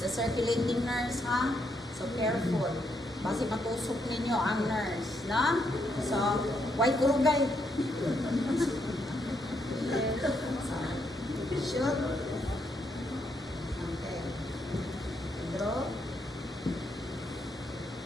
circulating nurse, ha? So careful. Kasi matusok ninyo ang nurse, na? So, why kurugay? Shoot. Okay. Draw.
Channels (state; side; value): normal; both; correlation 0.77